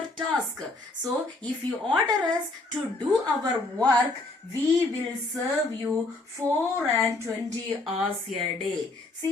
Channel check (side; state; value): right; quieter; 3.1 dB